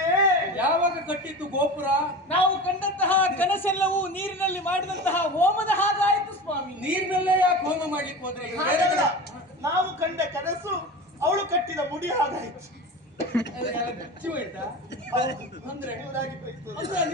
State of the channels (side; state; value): both; normal; correlation 0.30